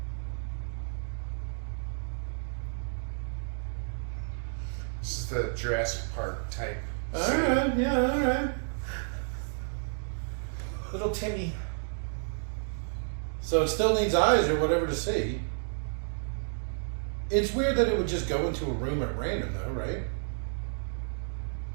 This is the Jurassic Park type. Alright, yeah, alright. Little Timmy. So it still needs eyes or whatever to see. It's weird that it would just go into a room at random though, right?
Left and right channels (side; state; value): left; silent; digital silence